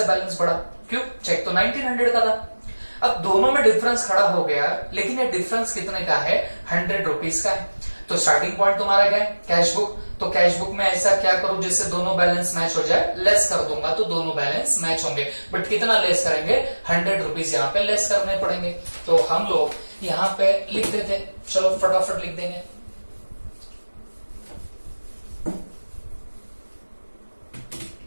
बैलेंस बढ़ा। क्यों, चेक तो 1900 का था। अब दोनों में डिफरेंस खड़ा हो गया, लेकिन ये डिफरेंस कितने का है, 100 रुपीज का है। तो स्टार्टिंग पॉइंट तुम्हारा क्या है, कैशबुक। तो कैशबुक में ऐसा क्या करूं जिससे दोनों बैलेंस मैच हो जाए, लेस कर दूंगा तो दोनों बैलेंस मैच होंगे। बट कितना लेस करेंगे, 100 रुपीज यहाँ पे लेस करने पड़ेंगे। तो हम लोग यहाँ पे लिख देते, चलो फटाफट लिख देंगे।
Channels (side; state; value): both; inverted; correlation -1.00